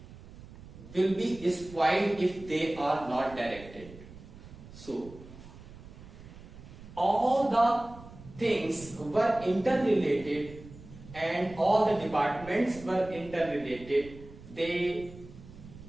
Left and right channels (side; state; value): right; noise; rumble, 17 dB below the sound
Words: will be spoiled if they are not directed. So all the things were interrelated and all the departments were interrelated. They